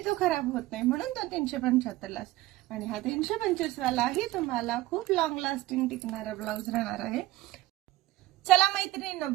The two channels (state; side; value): quieter; left; 17.5 dB